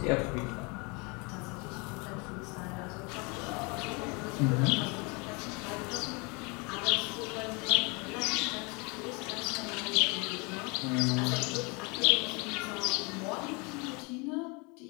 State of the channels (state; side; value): quieter; right; 29.9 dB